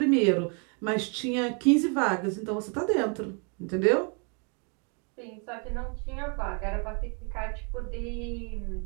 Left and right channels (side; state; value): left; quieter; 37.3 dB